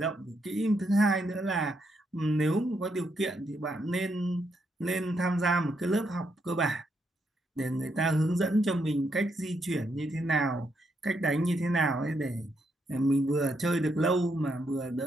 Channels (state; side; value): normal; both; correlation 0.78